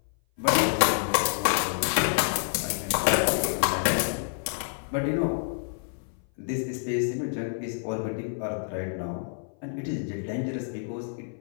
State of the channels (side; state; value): right; silent; 57 dB below the other